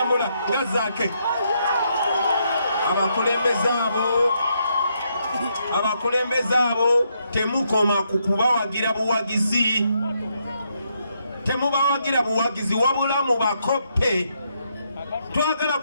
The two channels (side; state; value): both; inverted; correlation -0.77